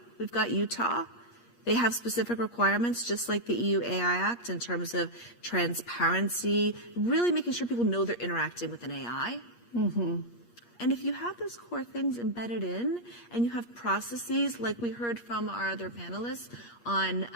we've got Utah. They have specific requirements, just like the EU AI Act, in terms of transparency, really making sure people know they're interacting with an AI. Mm-hmm. And if you have those core things embedded in, and you have processes, like we heard from our other panelists, on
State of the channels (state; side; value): late; right; 8.5 ms